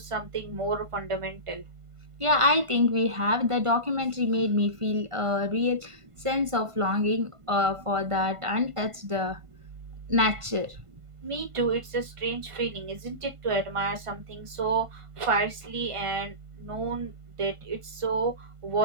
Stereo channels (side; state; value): left; late; 1.5 ms